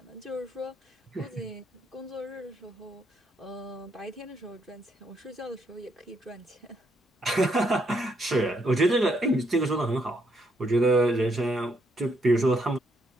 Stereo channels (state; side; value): normal; both; correlation 0.74